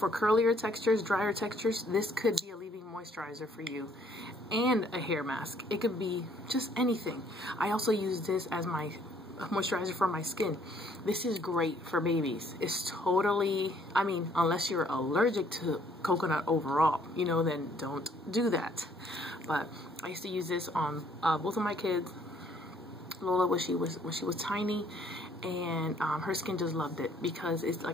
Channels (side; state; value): both; normal; correlation 0.64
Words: curlier textures, drier textures, this could be a leave-in moisturizer for you, and a hair mask. It could be just anything. I also use this as my moisturizer for my skin. This is great for babies. It's totally, I mean, unless you're allergic to coconut overall, you know, then don't do that. But I used to use this on both of my kids. Lola, when she was tiny, and her skin just loved it, because it's,